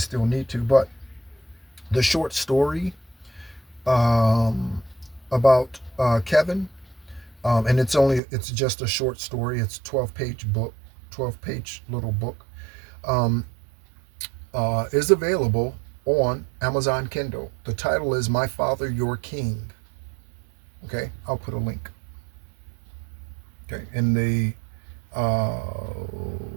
need to. But the short story um, about Kevin, and it's just a short story. It's 12-page book, 12-page little book, um, is available on Amazon Kindle. The title is My Father, Your King. Okay, I'll put a link. Okay, uh,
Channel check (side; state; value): left; drops out; at 8.2 s